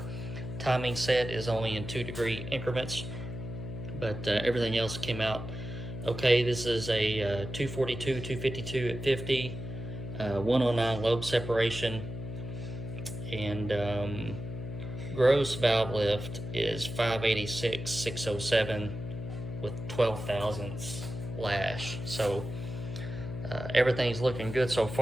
timing set is only in 2-degree increments, but everything else came out okay. This is a 242, 252 at 50, 109 lobe separation, and gross valve lift is 586, 607 with 12 thousandths lash. So everything's looking good so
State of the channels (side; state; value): left; noise; hum, 8 dB below the sound